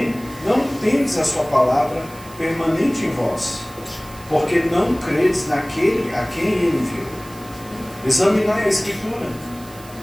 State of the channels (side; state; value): right; noise; hiss, 20 dB below the sound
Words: não tendes a sua palavra permanente em vós, porque não credes naquele a quem ele enviou. Examinai a Escritura,